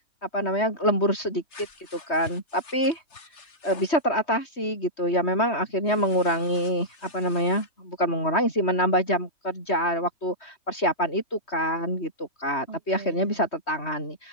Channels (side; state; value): right; late; 3.2 ms